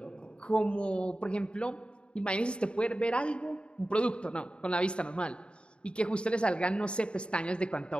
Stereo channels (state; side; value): late; right; 0.054 ms